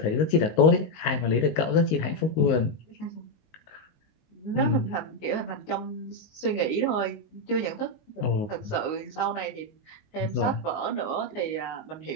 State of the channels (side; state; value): right; late; 19 ms